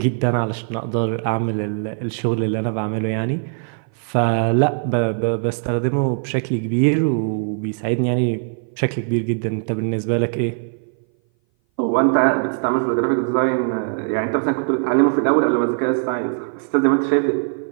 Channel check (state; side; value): silent; left; 59 dB below the other